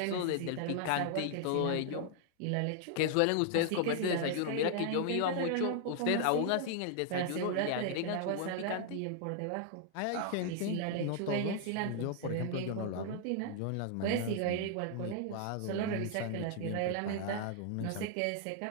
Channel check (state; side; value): different; both; correlation 0.00